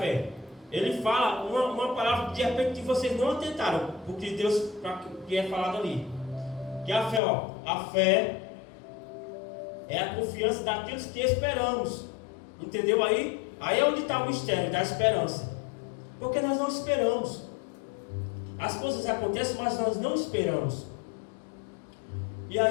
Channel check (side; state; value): right; drops out; at 7.2 s